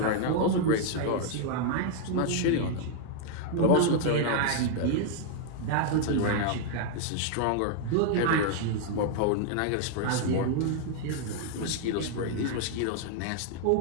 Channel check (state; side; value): different; both; correlation 0.00